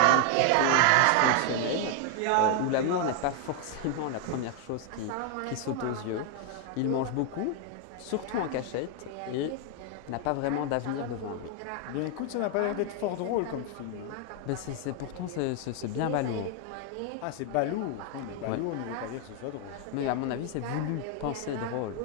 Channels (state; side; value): different; both; correlation 0.00